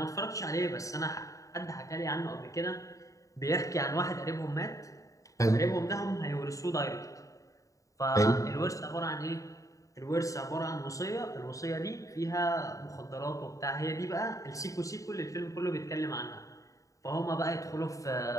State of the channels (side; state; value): right; late; 0.16 ms